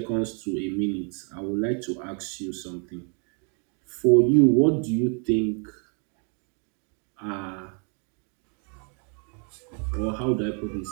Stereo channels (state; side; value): quieter; left; 39.7 dB